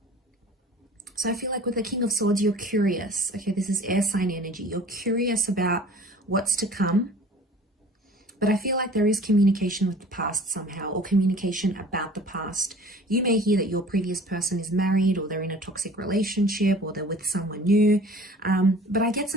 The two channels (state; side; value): normal; both; correlation 0.46